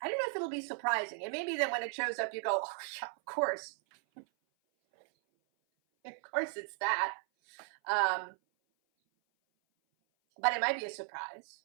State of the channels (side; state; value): left; silent; 54 dB below the other